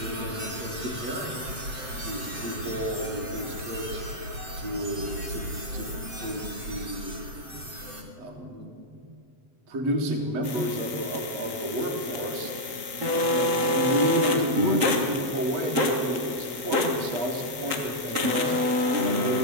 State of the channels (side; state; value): left; late; 7.8 ms